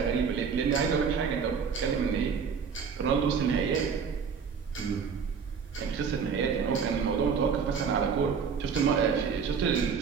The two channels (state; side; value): quieter; left; 6.2 dB